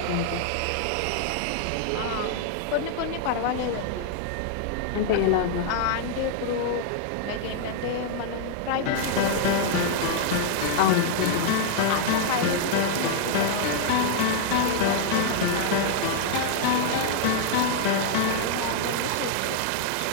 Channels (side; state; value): both; different; correlation -0.01